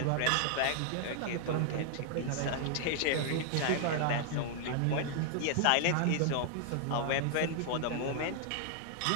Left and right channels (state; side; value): different; both; correlation 0.00